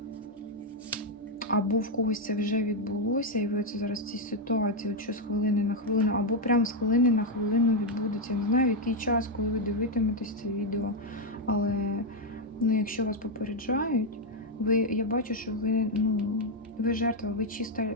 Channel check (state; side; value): normal; both; correlation 0.02